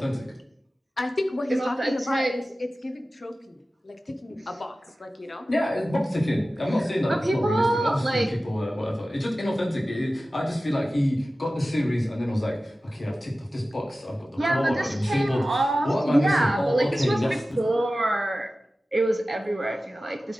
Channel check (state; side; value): normal; both; correlation 0.95